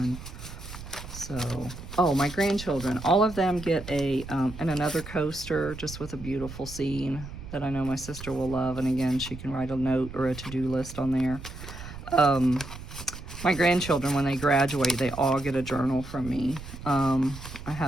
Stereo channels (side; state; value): right; noise; rumble, 12 dB below the sound